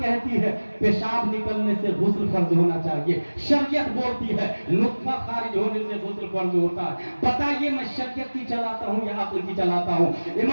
ہے پیشاب نکلنے سے غسل فرض ہونا چاہیے، شریعت بولتی ہے نطفہ خارج ہونے سے غسل فرض ہوتا ہے۔ بتائیے میں شریعت کی چلاتا ہوں یا عقل کی چلاتا ہوں؟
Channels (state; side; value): inverted; both; correlation -1.00